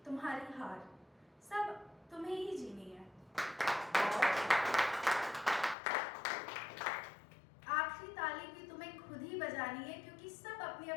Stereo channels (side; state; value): right; drops out; at 5.8 s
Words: तुम्हारी हार सब तुम्हें ही जीनी है। आखिरी ताली भी तुम्हें खुद ही बजानी है, क्योंकि सब अपनी